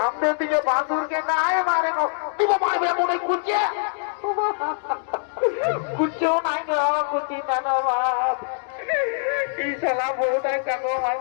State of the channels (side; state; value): right; silent; digital silence